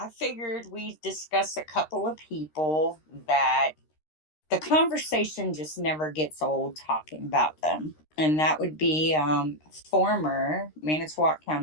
figured we'd discuss a couple of people that the conversation just never gets old talking about them. And that would be former Manitowoc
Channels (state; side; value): late; right; 13 ms